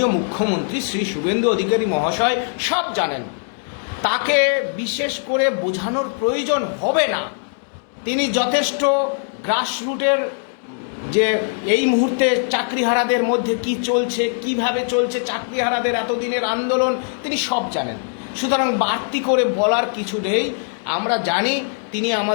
মুখ্যমন্ত্রী শ্রী শুভেন্দু অধিকারী মহাশয় সব জানেন, তাকে বিশেষ করে বোঝানোর প্রয়োজন হবে না। তিনি যথেষ্ট গ্রাসরুটের যে এই মুহূর্তে চাকরিহারাদের মধ্যে কি চলছে, কিভাবে চলছে চাকরিহারাদের এতদিনের আন্দোলন, তিনি সব জানেন। সুতরাং বাড়তি করে বলার কিছু নেই, আমরা জানি তিনি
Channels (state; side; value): silent; right; 65 dB below the other